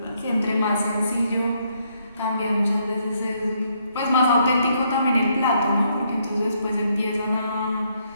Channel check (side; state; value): both; inverted; correlation -0.73